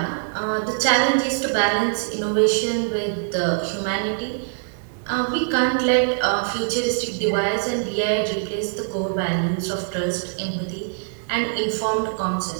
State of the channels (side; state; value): left; silent; digital silence